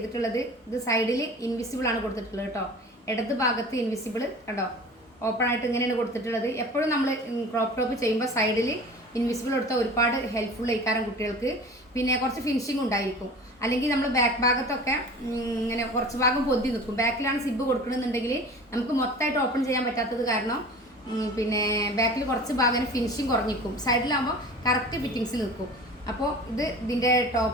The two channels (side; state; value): both; normal; correlation 0.39